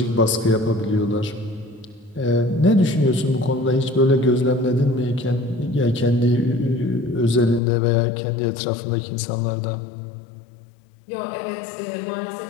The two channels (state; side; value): drops out; right; at 7.6 s